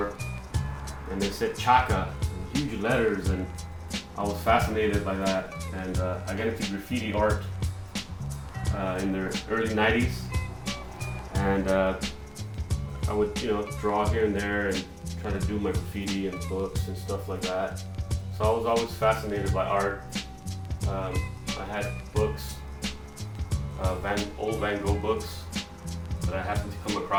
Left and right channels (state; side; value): identical; both; correlation 1.00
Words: and it said Chaka in huge letters, and I was fascinated by that. And I got into graffiti art in the early '90s, and I would, draw here and there and try to do my graffiti and books and stuff like that. So I was always fascinated by art. I had books, old Van Gogh books that I happened to come